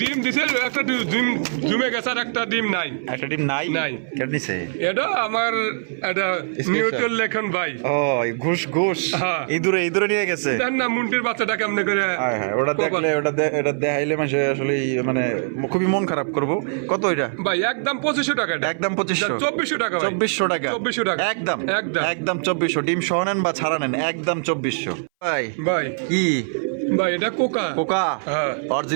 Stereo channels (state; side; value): silent; left; 61 dB below the other